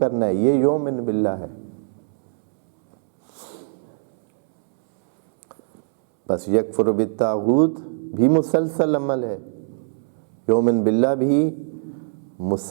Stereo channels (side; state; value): left; silent; 64 dB below the other